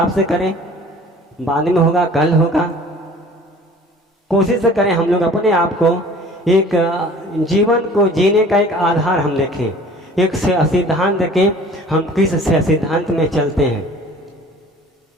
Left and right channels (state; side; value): normal; both; correlation 0.48